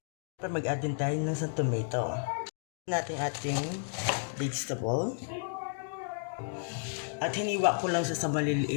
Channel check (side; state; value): right; silent; digital silence